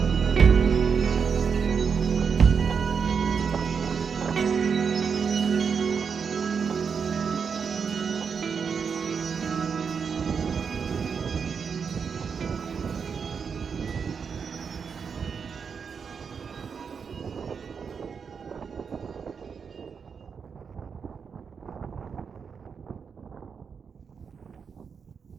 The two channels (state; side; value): quieter; left; 6.2 dB